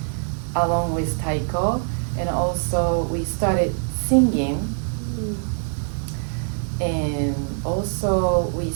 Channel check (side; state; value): left; silent; 63 dB below the other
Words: along with taiko, and also we started singing, and also we